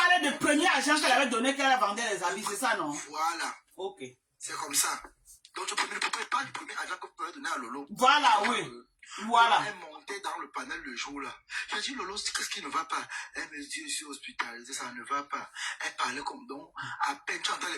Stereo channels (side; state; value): both; identical; correlation 1.00